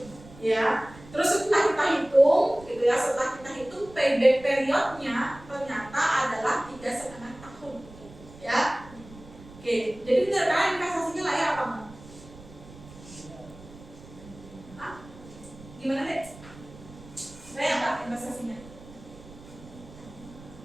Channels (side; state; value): right; noise; rumble, 19 dB below the sound